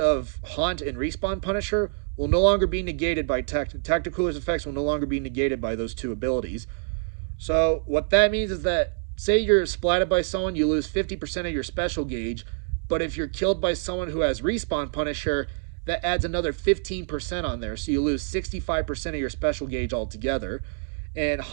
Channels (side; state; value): left; silent; digital silence